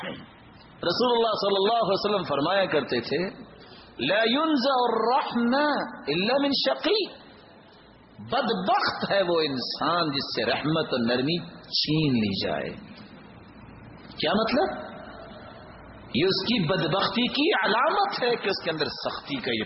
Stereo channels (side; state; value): both; identical; correlation 1.00